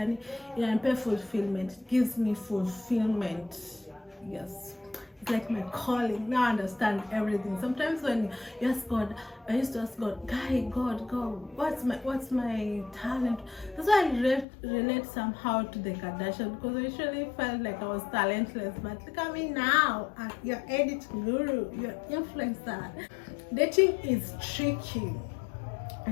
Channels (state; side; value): drops out; right; at 14.5 s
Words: fulfillment. It gives me fulfillment. Yes, it's like my calling. Now I understand everything. Sometimes when you ask God, I used to ask God, God, what's my talent? That's why I relate somehow to the Kardashian, because I usually felt like I was talentless. But look at me now, you're edit guru, you're influencer. Dating is tricky